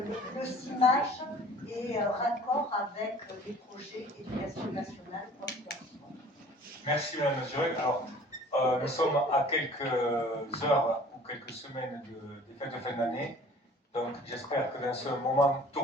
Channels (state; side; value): normal; both; correlation 0.49